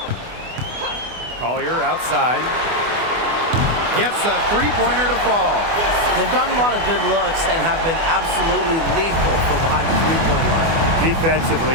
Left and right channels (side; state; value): left; late; 24 ms